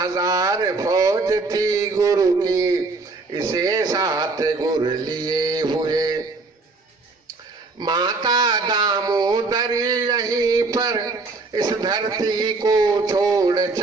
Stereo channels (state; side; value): quieter; left; 3.7 dB